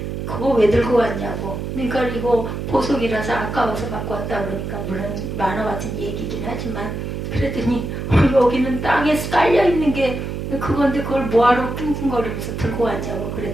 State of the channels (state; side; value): noise; right; hum, 5 dB below the sound